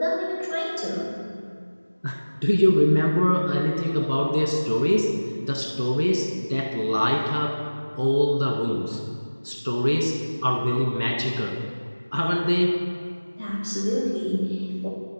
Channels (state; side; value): inverted; both; correlation -1.00